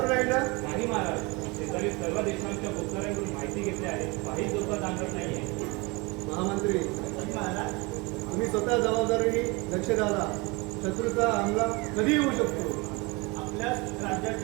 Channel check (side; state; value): left; quieter; 26.8 dB